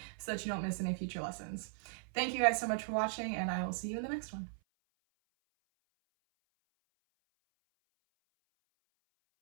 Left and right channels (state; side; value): silent; left; 53 dB below the other